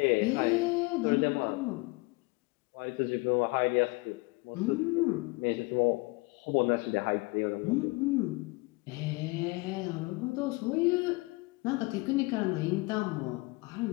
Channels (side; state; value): right; quieter; 25.3 dB